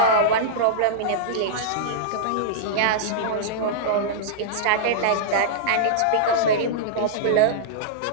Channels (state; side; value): different; both; correlation -0.03